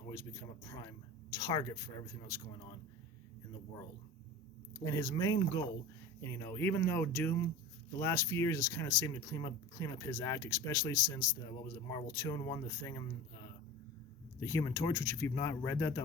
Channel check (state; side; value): normal; both; correlation 0.34